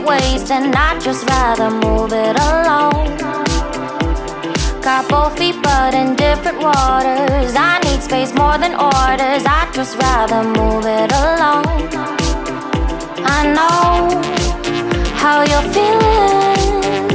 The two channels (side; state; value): both; identical; correlation 1.00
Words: I'd just rather move it along. Got both feet but in different waters. I need space more than orders. I'd just rather move it along. I know how you're feeling,